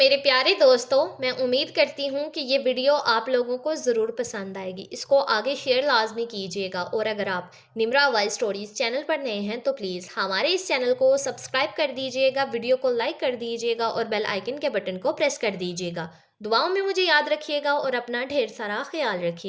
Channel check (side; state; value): both; identical; correlation 1.00